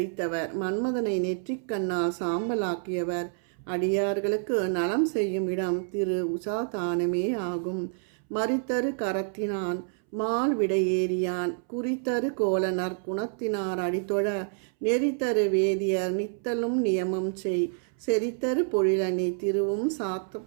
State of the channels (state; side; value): silent; left; 59 dB below the other